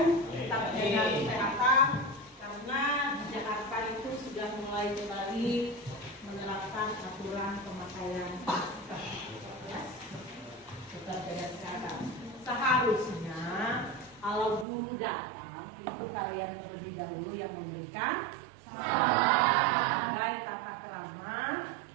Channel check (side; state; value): left; drops out; at 14.7 s